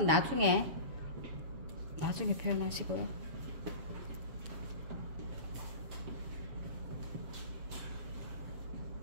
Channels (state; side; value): late; left; 7.0 ms